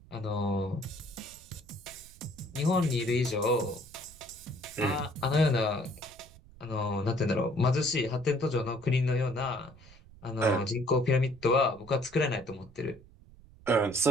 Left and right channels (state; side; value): noise; right; rumble, 22 dB below the sound